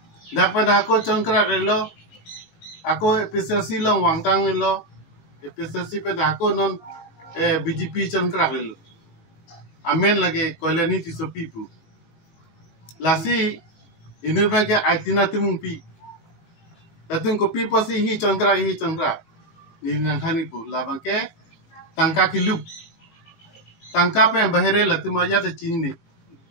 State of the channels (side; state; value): right; late; 18 ms